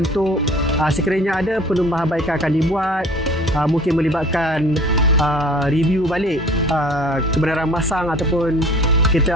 Sekiranya ada, penambahbaikan akan dibuat, mungkin melibatkan review balik kebenaran masang ataupun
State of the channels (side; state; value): both; normal; correlation 0.48